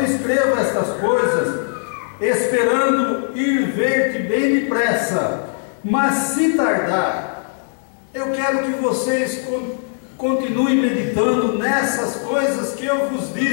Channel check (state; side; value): silent; right; digital silence